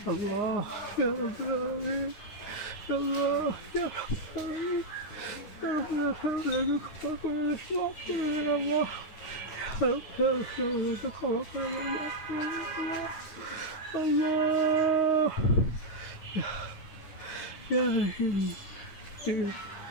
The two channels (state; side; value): late; right; 9.6 ms